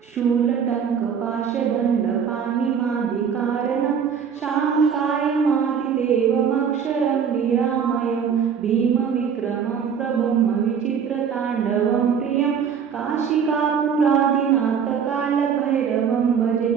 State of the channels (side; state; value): left; quieter; 7.2 dB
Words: शूलटङ्कपाशदण्डपाणिमादिकारणं शाङ्कायमादिदेवमक्षरं निरामयं भीमविक्रमं प्रभुं विचित्रताण्डवं प्रियं काशिकापुरादिनाथकालभैरवं भजे